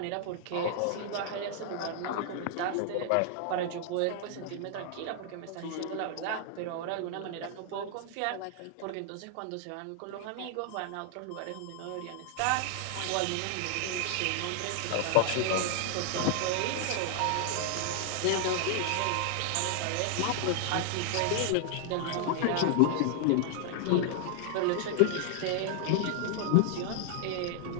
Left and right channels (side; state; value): both; different; correlation 0.00